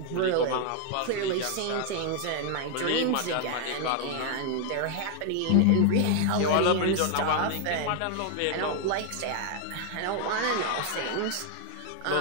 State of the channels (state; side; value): different; both; correlation 0.00